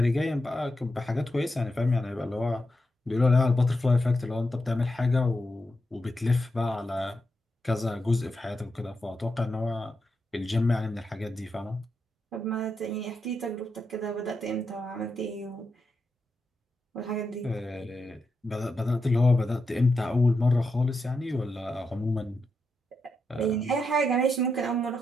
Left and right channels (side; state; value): both; normal; correlation 0.85